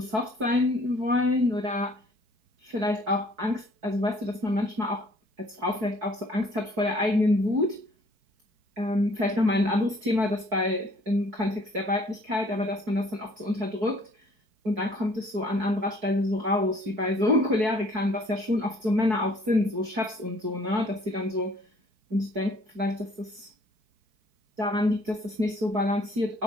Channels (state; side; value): late; left; 4.6 ms